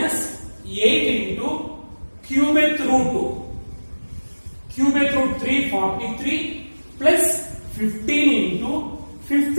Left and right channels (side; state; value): both; inverted; correlation -1.00